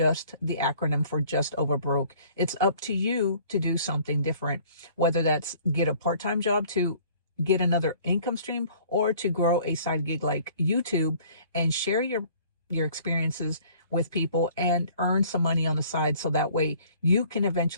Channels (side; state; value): both; inverted; correlation -0.54